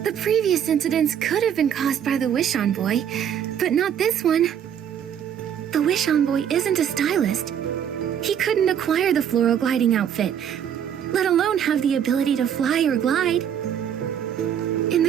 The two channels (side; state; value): left; quieter; 8.9 dB